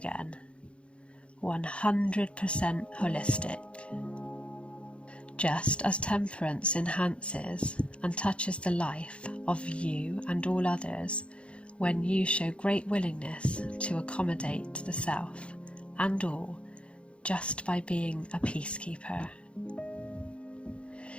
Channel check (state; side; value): late; right; 0.059 ms